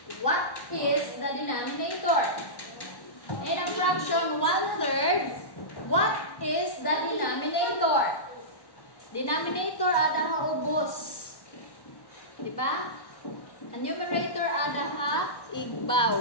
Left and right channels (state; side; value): late; right; 1.1 ms